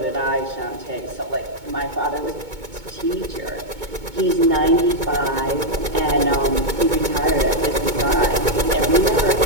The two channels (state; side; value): late; left; 2.2 ms